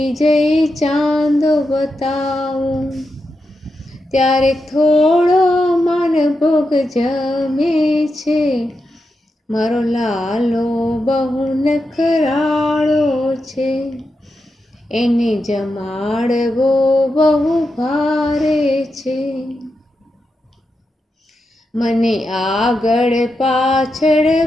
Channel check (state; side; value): normal; both; correlation 0.87